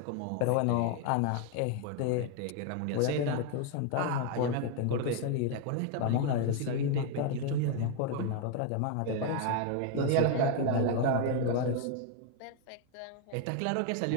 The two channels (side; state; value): both; different; correlation 0.01